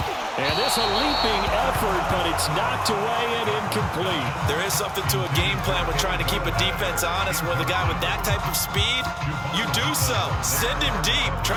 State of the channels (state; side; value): identical; both; correlation 1.00